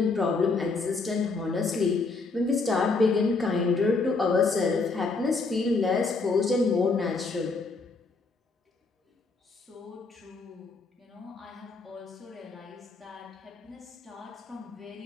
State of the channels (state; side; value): quieter; right; 3.9 dB